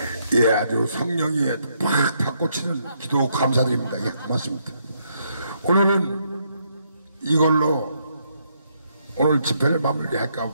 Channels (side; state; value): both; inverted; correlation -0.75